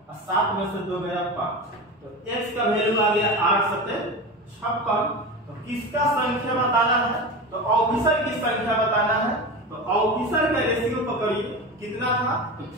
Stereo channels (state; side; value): normal; both; correlation 0.26